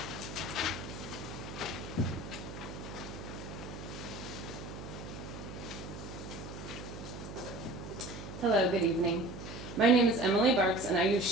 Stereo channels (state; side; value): noise; right; hum, 10 dB below the sound